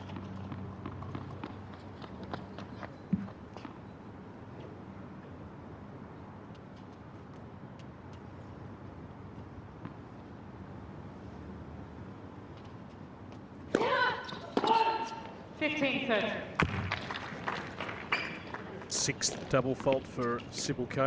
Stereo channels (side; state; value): both; identical; correlation 1.00